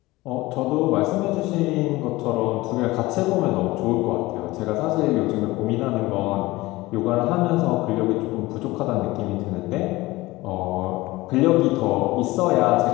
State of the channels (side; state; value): right; quieter; 19.8 dB